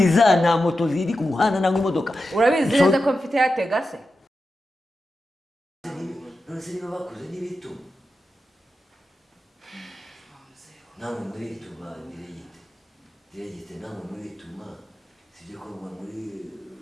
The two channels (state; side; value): normal; both; correlation 0.90